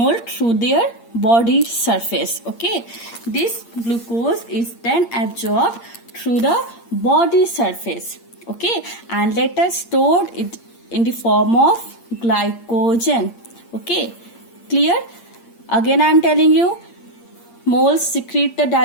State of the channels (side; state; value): right; late; 8.6 ms